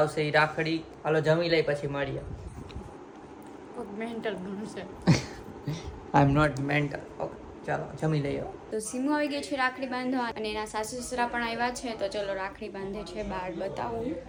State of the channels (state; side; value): identical; both; correlation 1.00